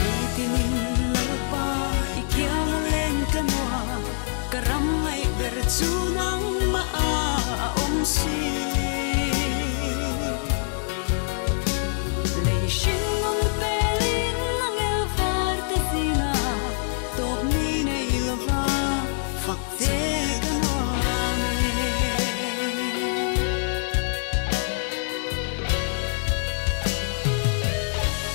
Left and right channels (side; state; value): right; silent; 62 dB below the other